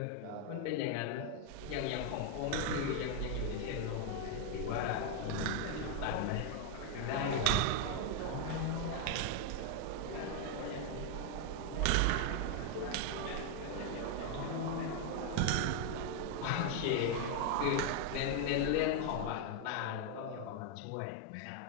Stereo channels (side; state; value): both; different; correlation 0.01